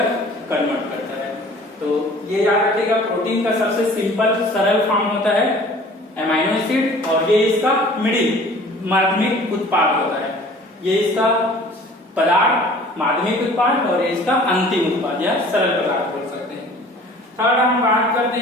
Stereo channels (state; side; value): normal; both; correlation 0.48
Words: कन्वर्ट करता है। तो ये याद रखिएगा, प्रोटीन का सबसे सिंपल सरल फॉर्म होता है अमाइनो एसिड, और ये इसका मिडिल माध्यमिक उत्पाद होता है। ये इसका पदार्थ माध्यमिक उत्पाद और ये इसका अंतिम उत्पाद या सरल पदार्थ बोल सकते हैं। थर्ड हम बात करते